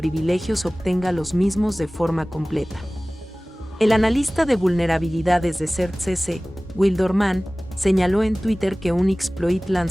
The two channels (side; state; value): both; normal; correlation 0.98